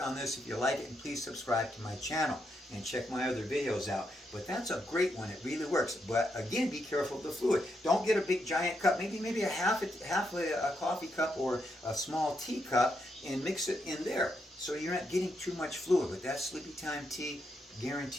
on this if you like it, and please subscribe to my channel and check my other videos out. But that's a great one. It really works. But again, be careful of the fluid. Don't get a big giant cup. Maybe a half a coffee cup or a small tea cup, and mix it in there, so you're not getting too much fluid. But that Sleepy Time Tea,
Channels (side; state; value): both; normal; correlation 0.81